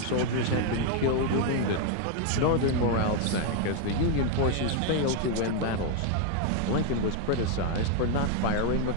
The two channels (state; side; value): different; both; correlation 0.00